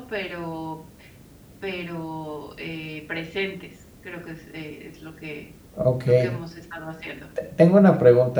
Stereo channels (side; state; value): both; identical; correlation 1.00